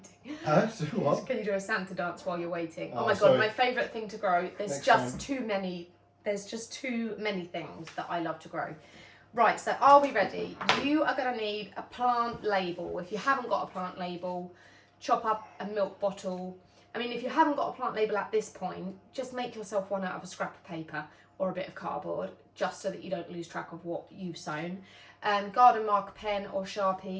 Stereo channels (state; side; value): identical; both; correlation 1.00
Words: Huh? What? Can you do a Santa dance while you're waiting? Oh my god, sorry. my favourite thing to grow. There's just too many things that I love to grow. Right, so are we ready? You are going to need a plant label. If you haven't got a plant label, chop up a milk bottle. I mean, if you haven't got a plant label at this point, just make yourself one out of a scrap of paper or a bit of cardboard, just so that you don't lose track of what you've sown. Garden marker pen or